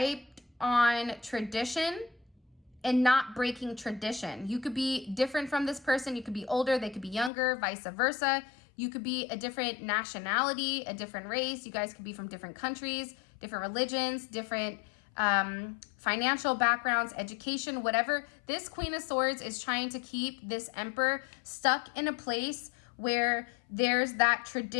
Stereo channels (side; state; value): right; drops out; at 7.3 s